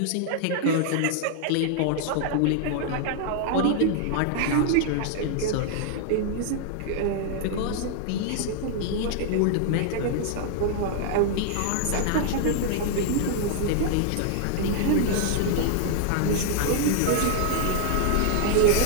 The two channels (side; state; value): both; different; correlation 0.00